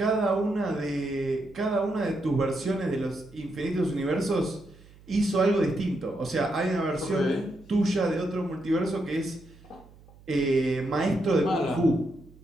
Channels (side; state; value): right; noise; hum, 24 dB below the sound